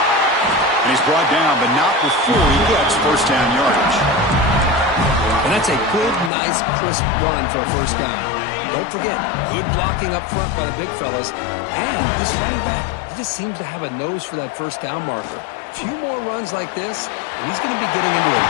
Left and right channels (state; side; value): drops out; right; at 6.3 s